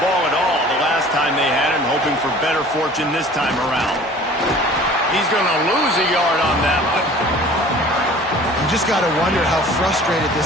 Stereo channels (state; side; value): normal; both; correlation 0.47